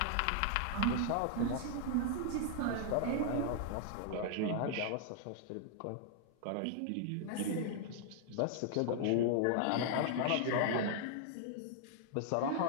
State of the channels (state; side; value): different; both; correlation 0.00